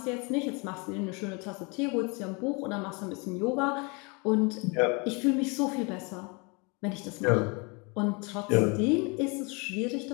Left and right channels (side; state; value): right; quieter; 30.5 dB